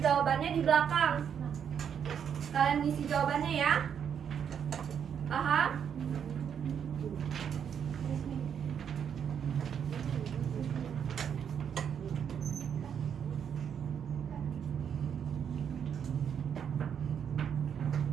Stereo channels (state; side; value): quieter; left; 8.0 dB